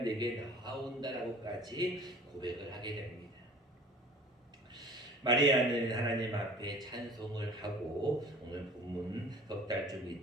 나아온다라고까지 고백을 하게 됩니다. 마리아는 하나님 앞에 찬송을 하고 오늘 본문 석 달쯤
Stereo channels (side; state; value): both; normal; correlation 0.46